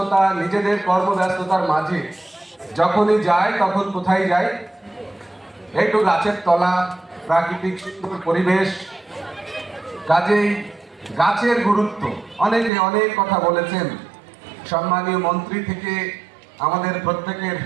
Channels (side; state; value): left; drops out; at 12.7 s